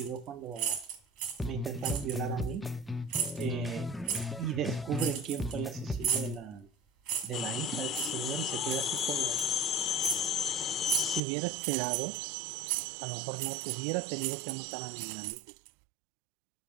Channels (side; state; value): left; drops out; at 11.2 s